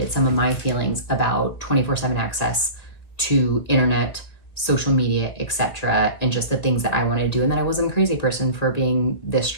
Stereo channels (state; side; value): late; right; 2.0 ms